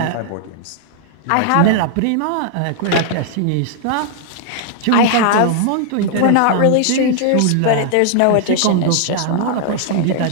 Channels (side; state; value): both; different; correlation -0.01